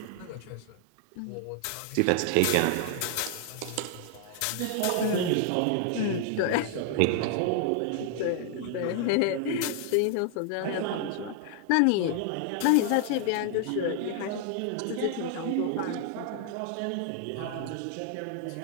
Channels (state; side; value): different; both; correlation 0.00